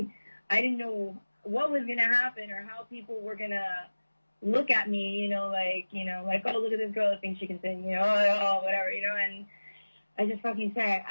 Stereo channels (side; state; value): both; inverted; correlation -1.00